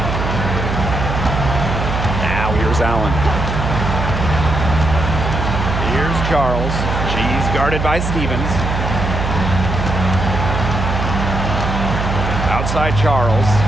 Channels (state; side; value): noise; right; hum, 2 dB below the sound